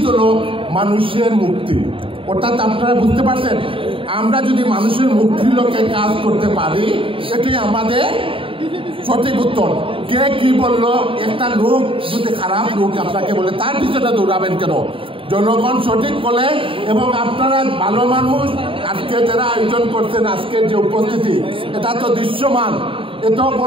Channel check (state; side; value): late; left; 0.26 ms